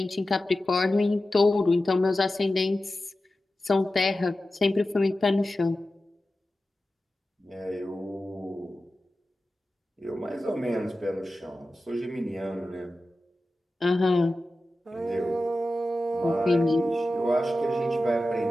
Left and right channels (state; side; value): normal; both; correlation 0.94